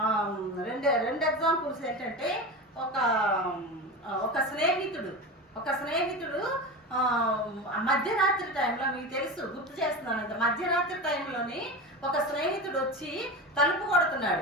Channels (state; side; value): normal; both; correlation 0.25